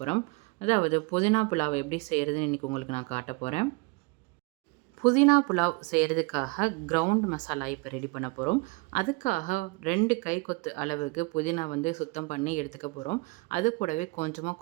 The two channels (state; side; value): quieter; left; 27.8 dB